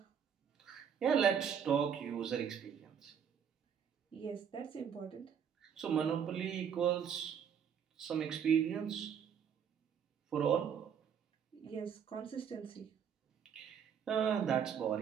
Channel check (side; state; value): left; quieter; 7.9 dB